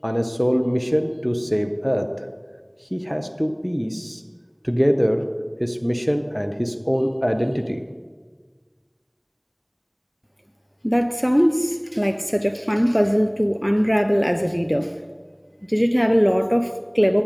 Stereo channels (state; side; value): identical; both; correlation 1.00